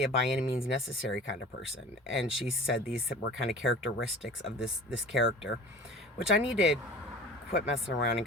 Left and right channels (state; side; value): normal; both; correlation 0.40